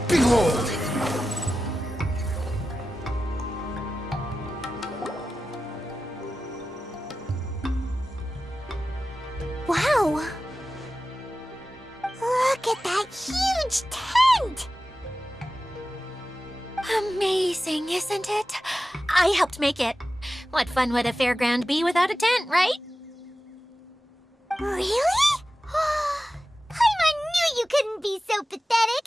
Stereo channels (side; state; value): both; normal; correlation 0.94